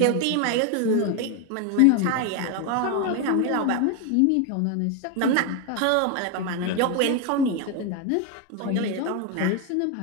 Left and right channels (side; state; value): both; different; correlation 0.01